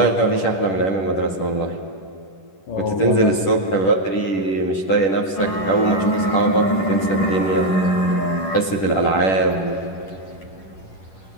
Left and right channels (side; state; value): right; late; 10 ms